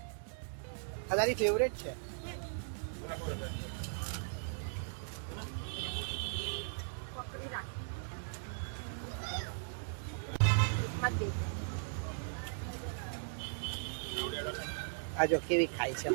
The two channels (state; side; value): silent; left; digital silence